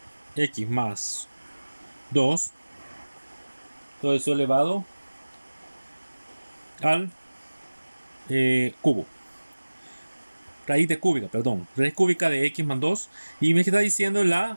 más 2, todo eso elevado al cubo. Raíz cúbica de x más 2. Y me está diciendo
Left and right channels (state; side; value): inverted; both; correlation -1.00